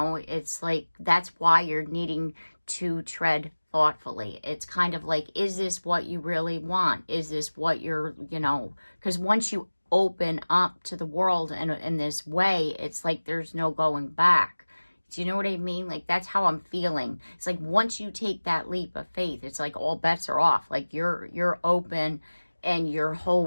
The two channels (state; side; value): inverted; both; correlation -1.00